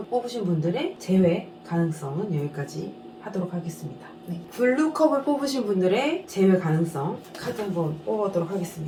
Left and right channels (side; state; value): both; identical; correlation 1.00